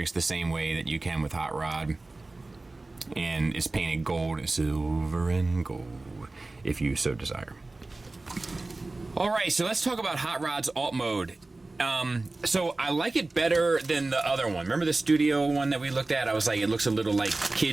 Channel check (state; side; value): quieter; left; 3.1 dB